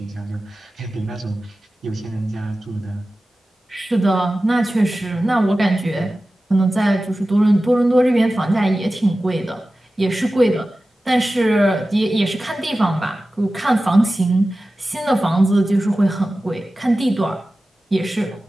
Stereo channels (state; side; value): normal; both; correlation 0.95